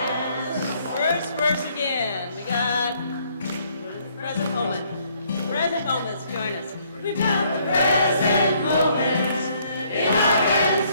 First verse again. We got present moment. Present moments, join us. We've got the present moments. In our hands,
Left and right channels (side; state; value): both; inverted; correlation -0.66